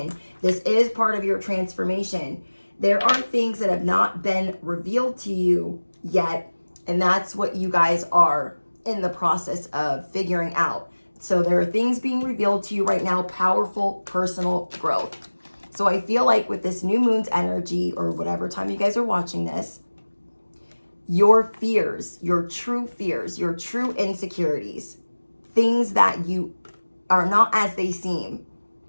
This is part of your transformation. There are things that have not been revealed to you yet, and that's what you guys are in the process of figuring out. So there are things being revealed to you right now, powerful personal growth. So I feel like with this new moon's energy, or whatever time you guys are watching this, your fears, your true insecurities, things that you are not as they seem,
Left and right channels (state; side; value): inverted; both; correlation -1.00